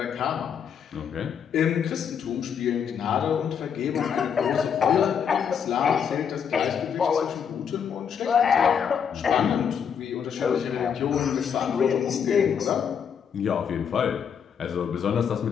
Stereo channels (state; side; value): quieter; right; 7.5 dB